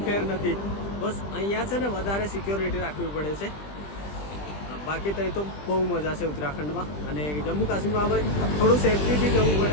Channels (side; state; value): right; late; 20 ms